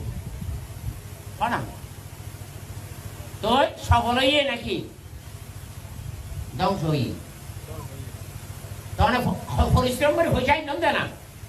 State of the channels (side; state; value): both; identical; correlation 1.00